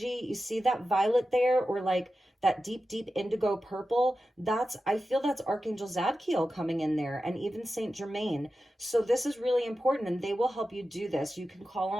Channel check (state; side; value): normal; both; correlation 0.92